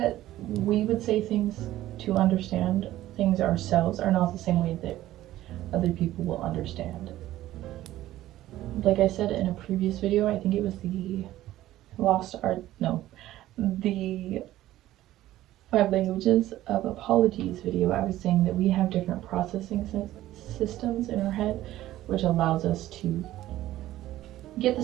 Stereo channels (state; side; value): quieter; left; 14.7 dB